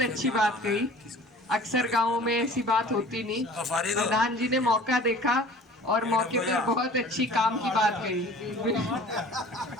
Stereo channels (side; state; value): both; normal; correlation 0.46